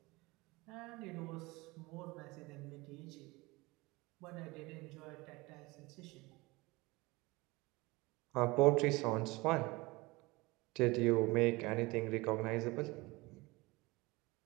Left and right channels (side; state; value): left; quieter; 23.0 dB